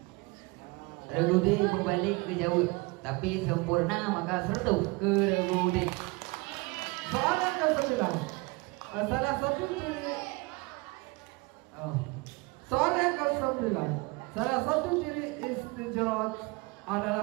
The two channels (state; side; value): quieter; left; 25.7 dB